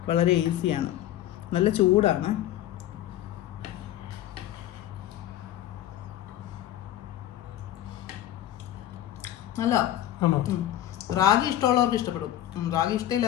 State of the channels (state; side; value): quieter; right; 12.8 dB